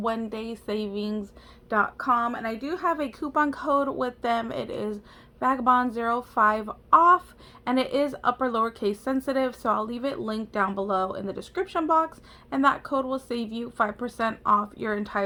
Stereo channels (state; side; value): identical; both; correlation 1.00